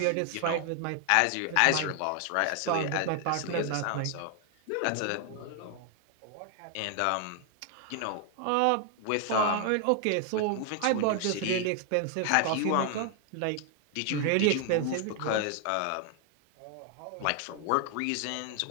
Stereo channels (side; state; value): both; different; correlation 0.00